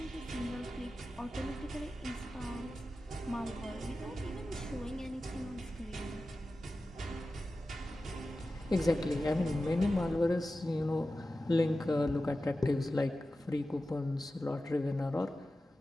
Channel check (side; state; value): both; normal; correlation 0.94